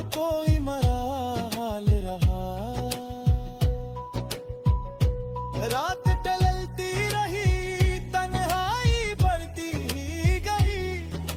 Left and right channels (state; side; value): identical; both; correlation 1.00